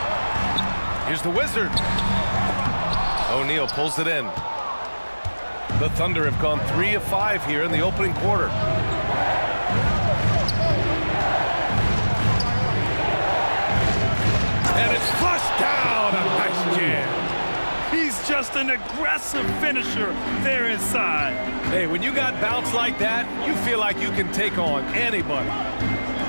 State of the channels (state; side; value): inverted; both; correlation -1.00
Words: Here's the Wizard. O'Neal pulls it in. The Thunder have gone 3 of 5 here in the opening quarter. And it's flushed down. A nice jam. an aggressive finisher there inside. Hey, when you got bounce like that, you feel like you can take on anybody.